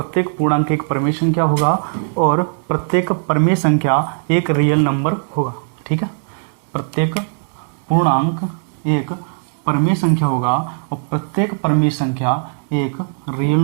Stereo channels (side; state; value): left; silent; 67 dB below the other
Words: पूर्णांक एक परिमेय संख्या होगा और प्रत्येक परिमेय संख्या एक रियल नंबर होगा। ठीक है, प्रत्येक पूर्णांक एक परिमेय संख्या होगा और प्रत्येक परिमेय संख्या एक रियल